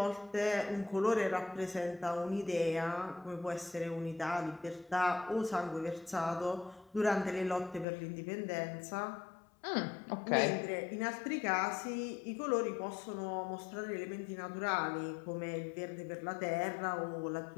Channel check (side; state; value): right; drops out; at 7.9 s